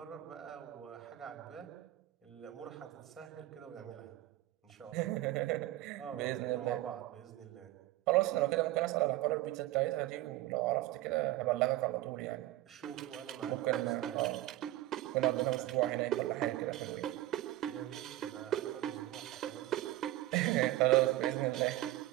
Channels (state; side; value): quieter; left; 16.1 dB